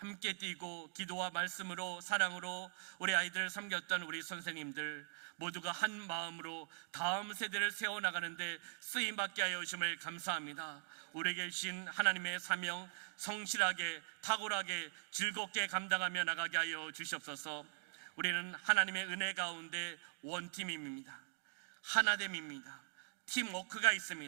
뛰고 기도와 말씀으로 사랑으로 우리 아이들을 섬겼던 우리 선생님들 모두가 한 마음으로 다음 세대를 세워나가는데 쓰임받게 하여 주심을 감사합니다. 우리에게 주신 하나님의 사명 성실하게 탁월하게 즐겁게 감당하며 나가게 하여 주시옵소서. 우리는 하나님의 은혜 가운데 원팀입니다. 하나됨입니다. 팀워크가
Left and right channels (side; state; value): left; silent; digital silence